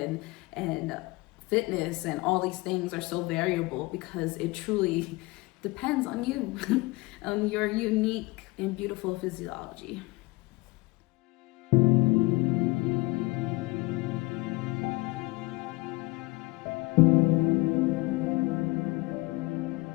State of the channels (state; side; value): quieter; right; 23.0 dB